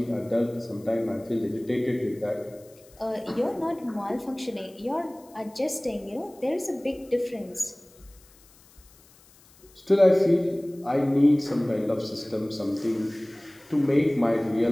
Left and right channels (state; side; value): noise; left; hiss, 27 dB below the sound